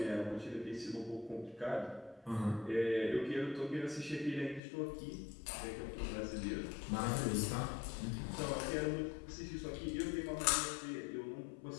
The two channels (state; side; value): drops out; right; at 4.6 s